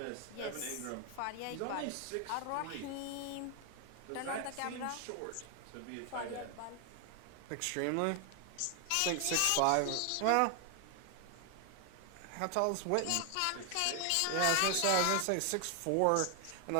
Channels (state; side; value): different; both; correlation 0.00